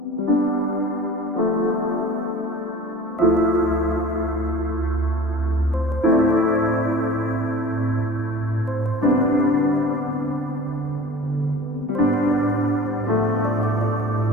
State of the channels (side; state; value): both; normal; correlation 0.40